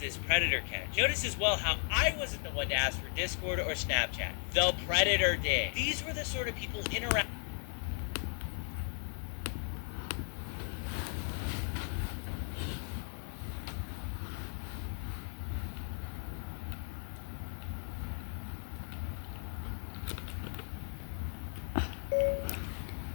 this predator catch. Notice as well how I wasn't the one to ask for Discord or Snapchat. The predator did. These were the sort of people interact.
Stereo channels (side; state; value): right; silent; 54 dB below the other